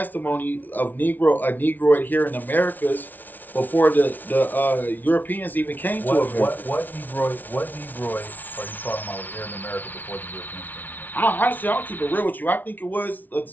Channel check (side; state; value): right; late; 0.084 ms